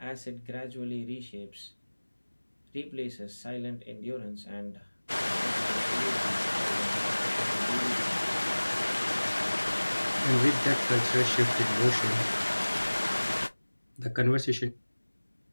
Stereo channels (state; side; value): inverted; both; correlation -1.00